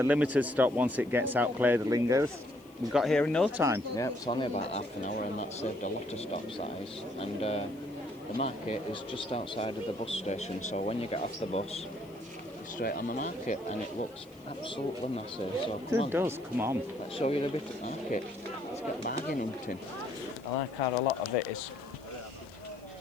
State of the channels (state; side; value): noise; left; hiss, 28 dB below the sound